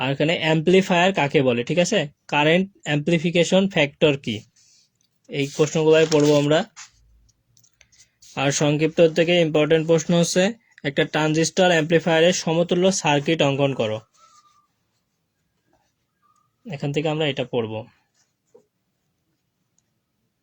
এখানে অ্যাম্পলিফায়ার কাকে বলে, ঠিক আছে, কারেন্ট অ্যাম্পলিফিকেশন ফ্যাক্টর কি, এই প্রশ্নগুলাই পড়বো আমরা। আর সংক্ষিপ্ত থেকে ইম্পর্টেন্ট প্রশ্ন হচ্ছে একটা ট্রানজিস্টর অ্যাম্পলিফায়ারের সমতুল্য সার্কিট অঙ্কন করো। এখান থেকে আমরা এটা পড়বো।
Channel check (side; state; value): both; identical; correlation 1.00